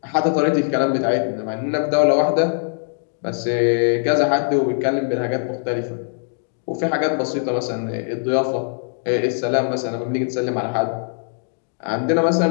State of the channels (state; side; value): silent; right; digital silence